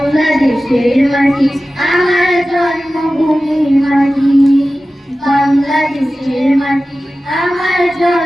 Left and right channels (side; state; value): both; normal; correlation 0.95